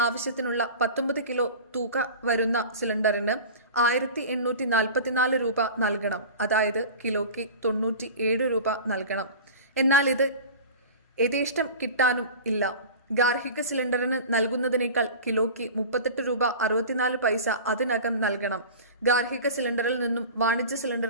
ആവശ്യത്തിനുള്ള 19 കിലോ തൂക്ക വരുന്ന സിലിണ്ടറിന് 1844 രൂപ നൽകണം. അതായത് കിലോയ്ക്ക് 97 രൂപ നൽകണം. എന്നാൽ ഇത് യഥേഷ്ടം കിട്ടാനും ഇല്ല. ഗാർഹിക സിലിണ്ടറിന് നൽകുന്നതിനേക്കാൾ കിലോയ്ക്ക് 38 രൂപ 64 പൈസ അതിനകം നൽകണം. ഗാർഹിക സിലിണ്ടറിൽ നിന്നും വാണിജ്യ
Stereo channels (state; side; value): inverted; both; correlation -0.35